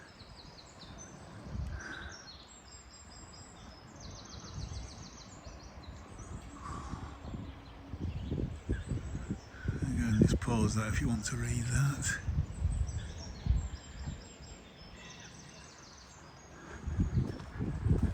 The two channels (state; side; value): identical; both; correlation 1.00